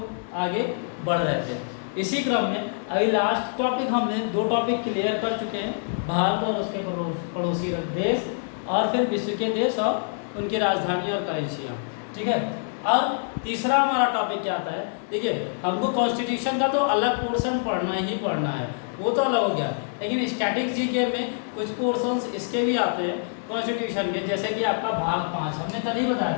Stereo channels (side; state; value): right; silent; digital silence